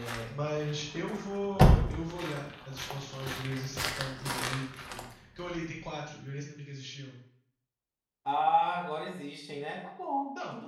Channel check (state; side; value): identical; both; correlation 1.00